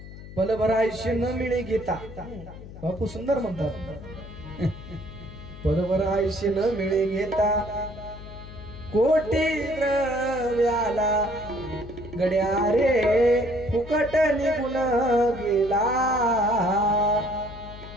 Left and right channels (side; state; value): left; noise; hum, 14 dB below the sound